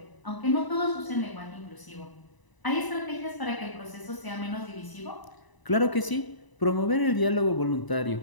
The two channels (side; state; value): right; late; 1.0 ms